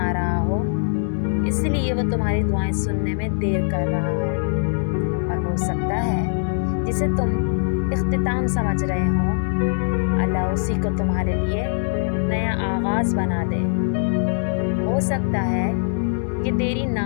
رہا ہو، اس لیے وہ تمہاری دعائیں سننے میں دیر کر رہا ہو، اور ہو سکتا ہے جسے تم اختتام سمجھ رہے ہو، اللہ اسی کو تمہارے لیے نیا آغاز بنا دے۔ ہو سکتا ہے کہ تیری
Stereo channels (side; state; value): right; silent; digital silence